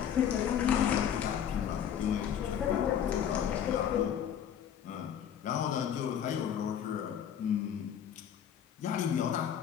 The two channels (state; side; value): quieter; right; 9.1 dB